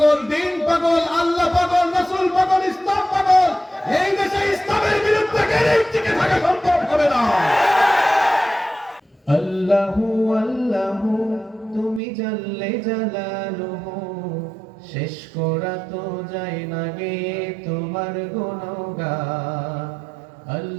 দ্বীন পাগল, আল্লাহ পাগল, রাসূল পাগল, ইসলাম পাগল। এই দেশে ইসলামের বিরুদ্ধে গেলেই টিকে থাকা সম্ভব হবে না। আল্লাহু আল্লাহু তুমি জাল্লে জালালুহু, শেষ করা তো যায় না গে তোমার গুণগান।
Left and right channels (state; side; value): drops out; left; at 12.0 s